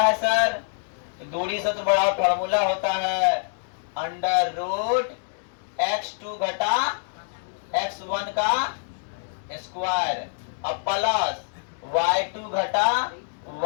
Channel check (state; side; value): silent; right; digital silence